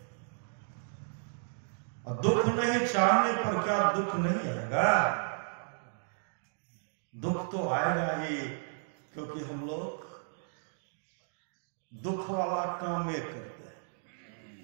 और दुख नहीं चाहने पर क्या दुख नहीं आएगा? दुख तो आएगा ही, क्योंकि हम लोग दुख वाला काम ये करते हैं।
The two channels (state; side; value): silent; left; digital silence